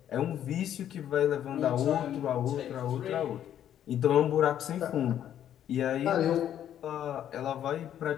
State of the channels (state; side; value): quieter; right; 10.5 dB